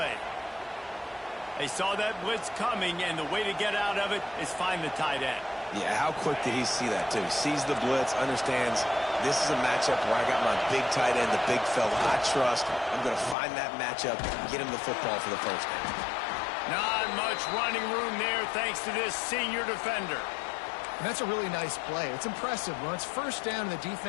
They saw that blitz coming, and the way to get out of it is find the tight end. Yeah, how quick did he see that, too? Sees the blitz, understands this is a matchup where I got my big tight end, the big fella I trust. I'm going to find that matchup and get him the football for the first down. Not much running room there thanks to this senior defender. And that's a really nice play. It's impressive. When it's first down and the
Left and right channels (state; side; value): drops out; right; at 13.4 s